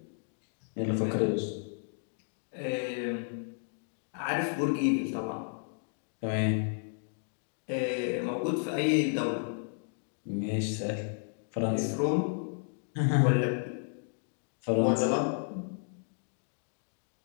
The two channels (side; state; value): right; silent; digital silence